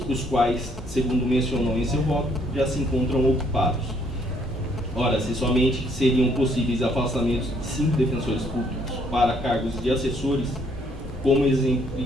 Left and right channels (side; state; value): both; normal; correlation 0.67